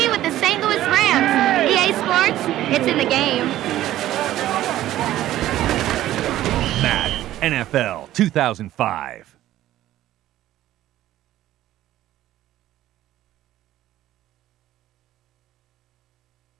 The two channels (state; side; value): quieter; left; 13.9 dB